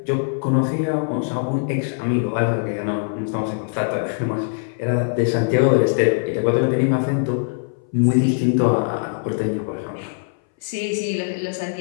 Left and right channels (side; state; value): right; silent; 61 dB below the other